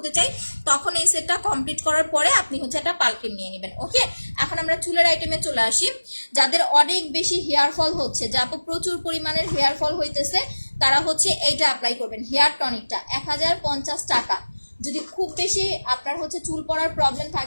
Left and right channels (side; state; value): both; inverted; correlation -1.00